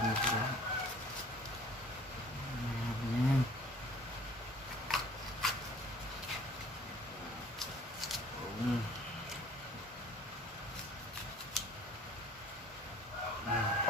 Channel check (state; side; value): normal; both; correlation 0.50